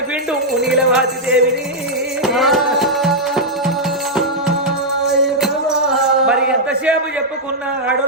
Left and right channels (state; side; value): normal; both; correlation -0.05